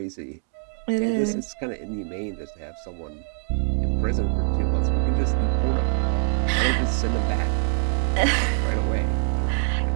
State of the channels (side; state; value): left; silent; 62 dB below the other